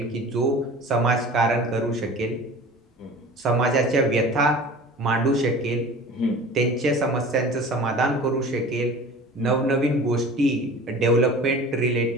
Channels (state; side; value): normal; both; correlation 0.40